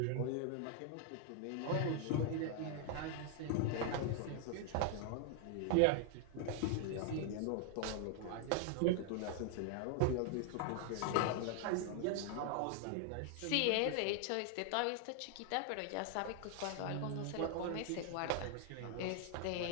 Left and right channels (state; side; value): different; both; correlation 0.00